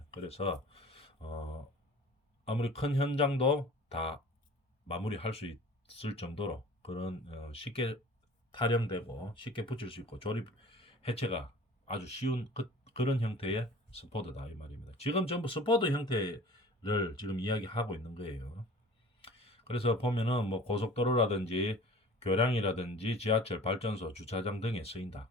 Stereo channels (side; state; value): both; normal; correlation 0.44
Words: 그래서 아무리 큰 현장도 다 마무리할 수 있을 정도로 그런 쉽게 타령되고 쉽게 붙일 수 있고 조립 해체가 아주 쉬운 그런 형태의 스포드다 이 말입니다. 지금 전부 스포드 형태를 지금 이야기하고 있는 거예요. 그래서 보면은 뭐 고속도로라든지 교량이라든지 지하철, 발전소, 주차장 등에 쓰인다.